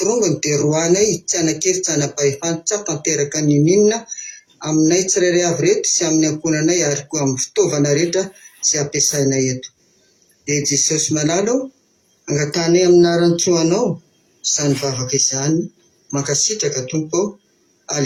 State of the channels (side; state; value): both; identical; correlation 1.00